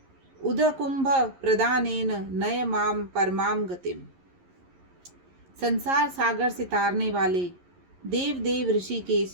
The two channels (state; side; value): late; left; 11 ms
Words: उदकुंभ प्रदानेन नय माम परमाम गतिम। संसार सागर से तारने वाले देव देव ऋषिकेश,